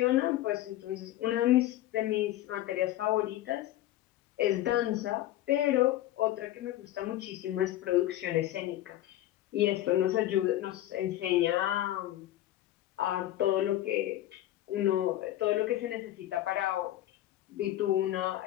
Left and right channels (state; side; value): quieter; right; 14.2 dB